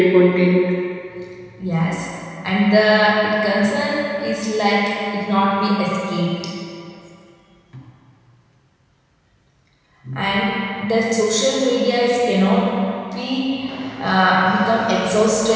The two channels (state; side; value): identical; both; correlation 1.00